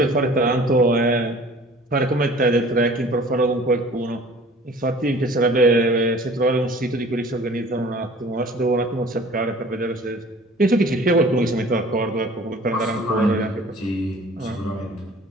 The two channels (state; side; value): normal; both; correlation 0.47